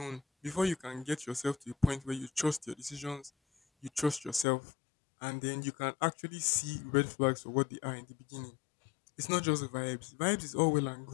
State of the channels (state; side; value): drops out; right; at 4.5 s